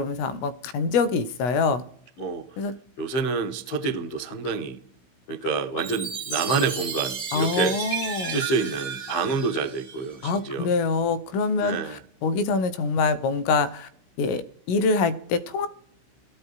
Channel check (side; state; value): right; late; 16 ms